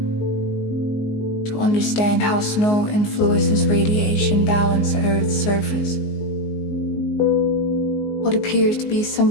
to understand how snow influences radiation balance at Earth's surface. What appears to be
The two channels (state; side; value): late; right; 19 ms